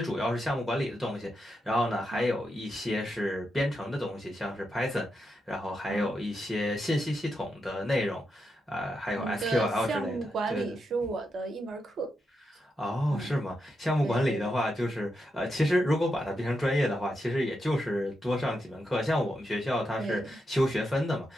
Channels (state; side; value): normal; both; correlation 0.85